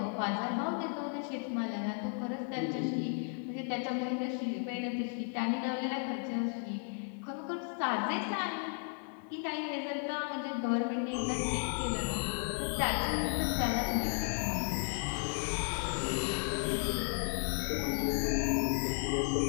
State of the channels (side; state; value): right; quieter; 39.1 dB